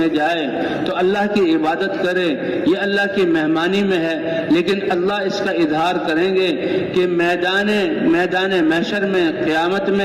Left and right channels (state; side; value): identical; both; correlation 1.00